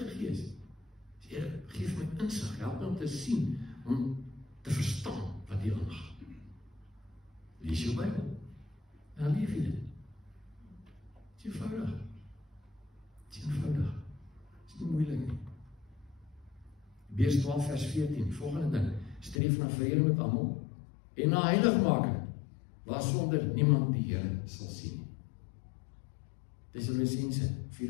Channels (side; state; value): right; drops out; at 19.4 s